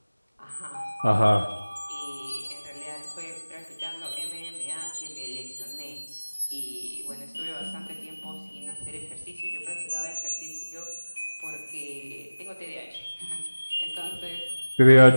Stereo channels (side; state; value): both; inverted; correlation -1.00